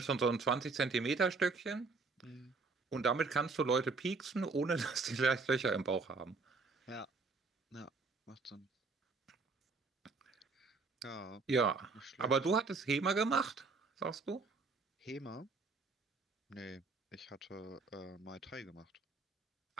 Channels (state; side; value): quieter; left; 4.1 dB